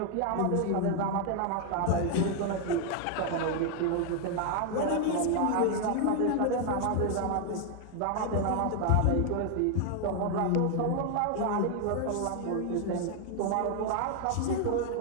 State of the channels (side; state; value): both; different; correlation 0.00